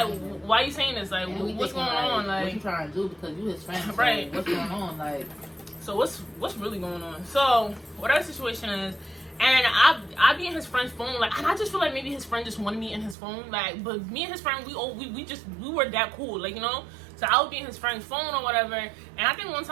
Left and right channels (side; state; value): left; drops out; at 13.2 s